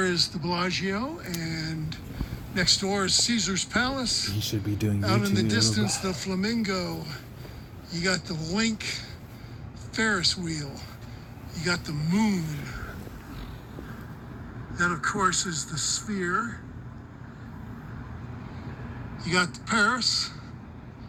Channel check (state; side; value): identical; both; correlation 1.00